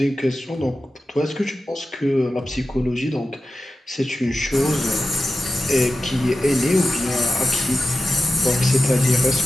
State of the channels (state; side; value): normal; both; correlation 0.92